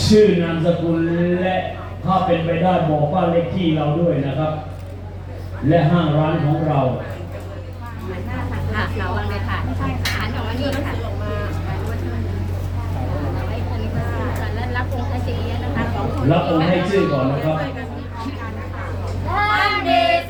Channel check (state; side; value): identical; both; correlation 1.00